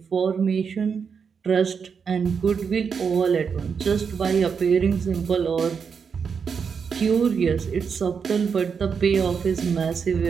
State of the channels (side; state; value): left; quieter; 6.2 dB